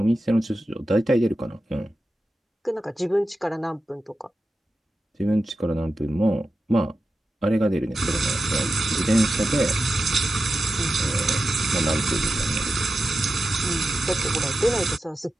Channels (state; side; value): normal; both; correlation 0.92